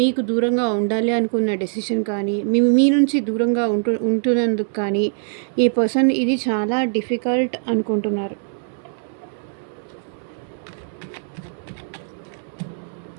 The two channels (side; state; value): left; silent; digital silence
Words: దూరంగా ఉండాలి అనుకున్న డెసిషన్ కానీ, మీ నుంచి దూరంగా ఉంటున్నందుకు కానీ ఈ పర్సన్ ఇది చాలా డిఫికల్ట్ అనుకుంటున్నారు.